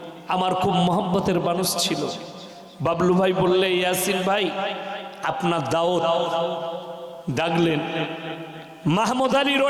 আমার খুব মহব্বতের মানুষ ছিল। বাবলু ভাই বললে, ইয়াসিন ভাই আপনার দাওয়াত, ডাকলেন মাহমুদ আলী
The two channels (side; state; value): both; identical; correlation 1.00